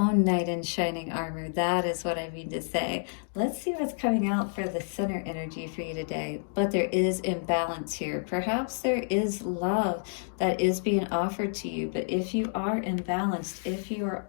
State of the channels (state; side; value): silent; right; digital silence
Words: knight in shining armor. That is what I mean to say. Let's see what's coming out for the center energy for you today. But there is imbalance here. Perhaps there is love that is being offered to you. But if you are imbalanced, if you are